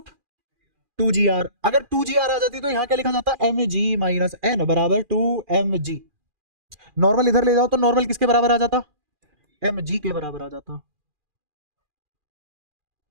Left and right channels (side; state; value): left; late; 2.4 ms